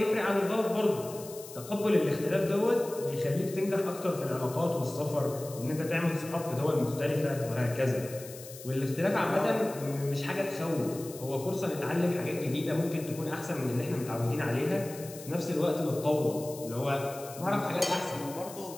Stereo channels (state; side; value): noise; left; hiss, 15 dB below the sound